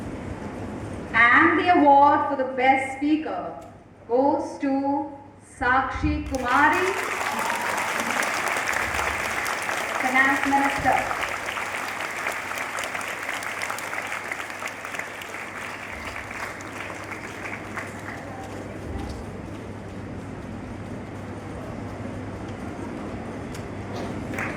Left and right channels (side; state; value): both; identical; correlation 1.00